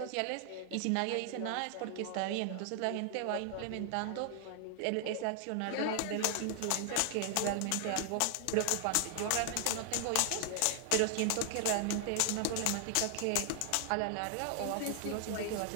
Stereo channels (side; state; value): both; different; correlation 0.00